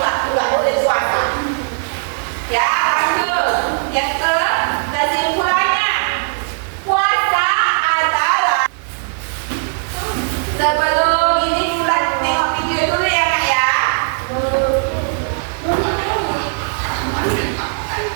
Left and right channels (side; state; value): left; silent; digital silence